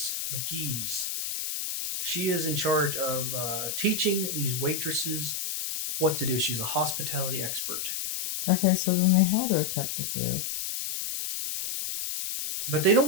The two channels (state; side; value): noise; left; hiss, 3 dB below the sound